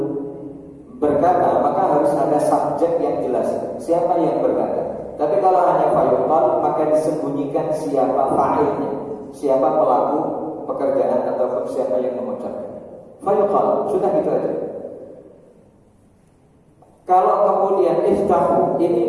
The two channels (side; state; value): both; identical; correlation 1.00